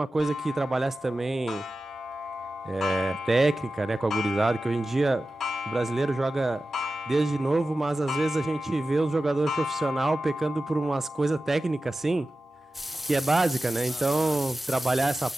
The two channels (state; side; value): normal; both; correlation 0.94